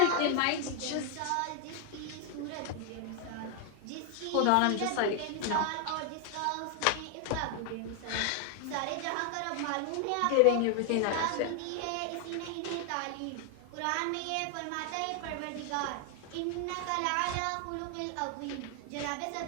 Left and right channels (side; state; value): both; different; correlation 0.00